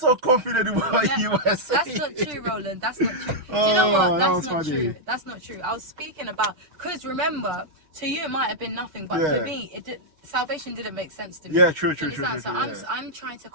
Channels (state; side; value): late; left; 6.7 ms